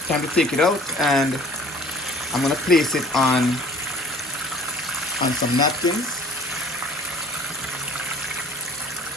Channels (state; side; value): normal; both; correlation 0.50